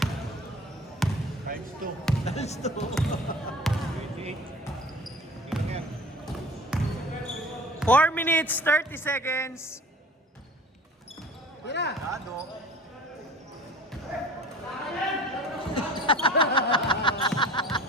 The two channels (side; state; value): both; normal; correlation 0.42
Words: Times 2. Times 2. 28. Ilan yan? 4 minutes, 30 seconds. Tira! Ano?